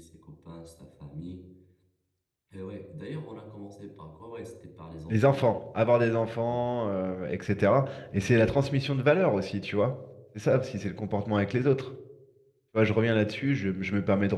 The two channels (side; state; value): both; identical; correlation 1.00